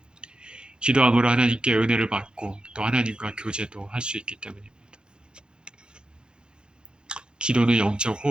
기도함으로 하나님께 은혜를 받고 또 하나님과 교제도 할 수 있기 때문입니다. 기도는 영적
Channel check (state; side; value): late; left; 0.049 ms